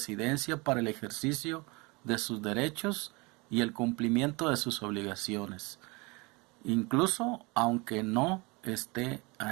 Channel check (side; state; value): left; quieter; 26.5 dB